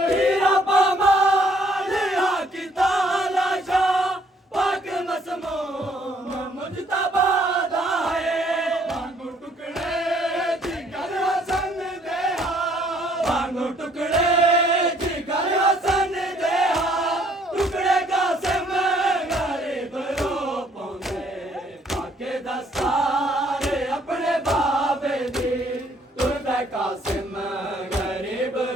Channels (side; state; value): both; normal; correlation 0.64